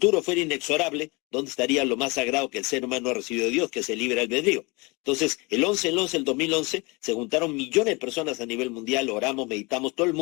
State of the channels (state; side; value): quieter; right; 26.7 dB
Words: fuera inexorable, ¿dónde estaría lo más sagrado que el ser humano ha recibido de Dios, que es el libre albedrío? Entonces, el 2011, se juntaron millones de personas a nivel mundial, oramos, meditamos, todo el